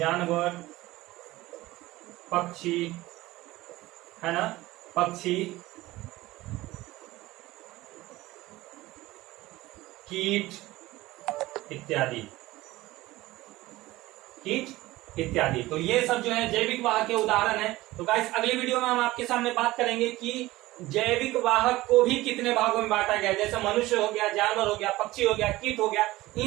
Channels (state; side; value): quieter; left; 18.1 dB